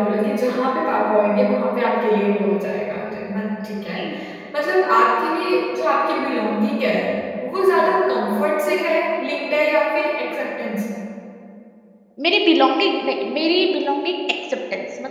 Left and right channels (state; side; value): identical; both; correlation 1.00